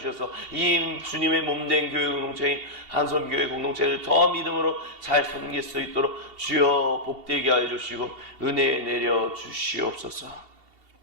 이 주님의 몸된 교회 공동체인 한손교회 공동체를 더 믿음으로 잘 섬길 수 있도록 주여 복되게 하여 주시고 은혜 내려 주시옵소서.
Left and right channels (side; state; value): left; late; 2.7 ms